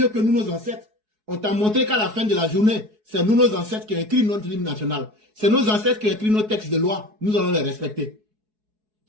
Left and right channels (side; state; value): left; late; 4.7 ms